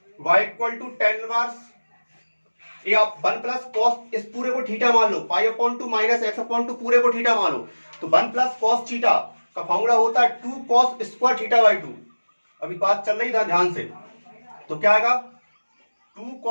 y equal to tan inverse, ये आप 1 प्लस कॉस इस पूरे को थीटा मान लो, pi upon 2 minus X upon 2 पूरे को थीटा मान लो, तो 1 प्लस कॉस थीटा का फॉर्मूला होता है 2 कॉस स्क्वायर थीटा बाई 2। अभी बात चल रही था ध्यान से, तो क्या आएगा 2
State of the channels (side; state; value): both; inverted; correlation -1.00